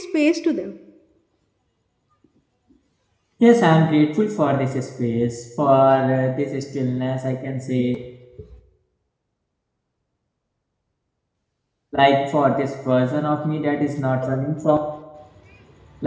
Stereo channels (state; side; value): identical; both; correlation 1.00